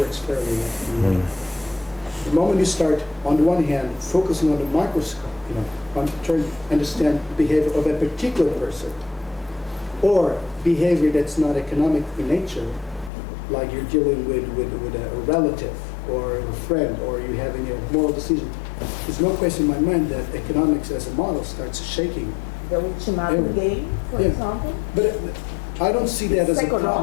fairly well. The moment you start, on the one hand, focusing on the microscope, on trying to understand the behavior of a particular person, or behavior that's not economic in nature, like you're dealing with a relative or a friend, or you're having a moral decision, there's no question in my mind that economics as a model starts shaking. The ultimatum game, for Yeah. example. But I don't see that as a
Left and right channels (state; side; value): drops out; right; at 13.1 s